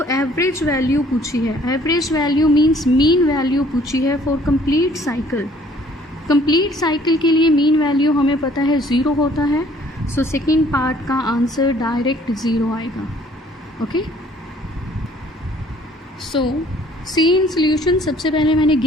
एवरेज वैल्यू पूछी है. Average value means mean value पूछी है for complete cycle. Complete cycle के लिए मीन वैल्यू हमें पता है 0 होता है. सो सेकेंड पार्ट का आंसर डायरेक्ट 0 आएगा. Okay. So C in solution सबसे पहले मैंने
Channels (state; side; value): normal; both; correlation 0.58